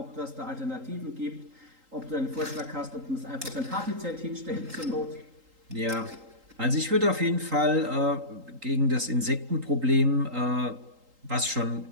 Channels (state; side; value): late; left; 3.8 ms